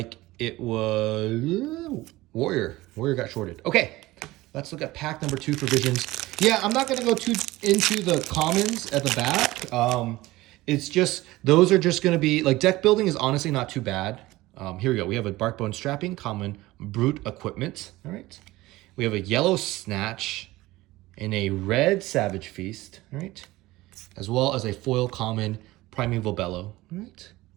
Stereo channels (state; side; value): quieter; left; 18.6 dB